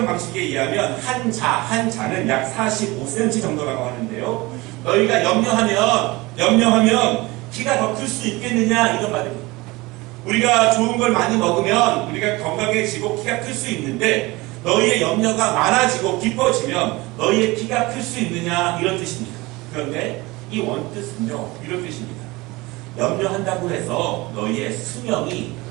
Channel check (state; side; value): quieter; left; 22.2 dB